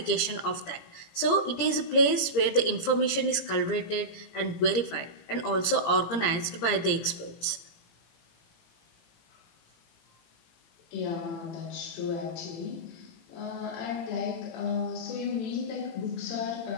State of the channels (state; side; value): late; right; 17 ms